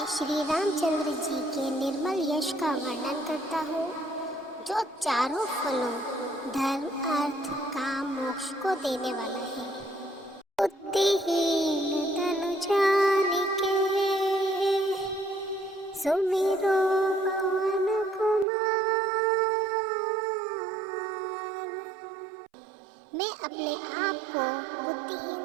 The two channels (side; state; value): left; drops out; at 18.4 s